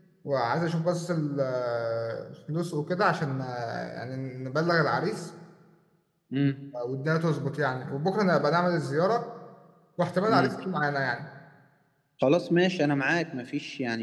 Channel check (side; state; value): both; identical; correlation 1.00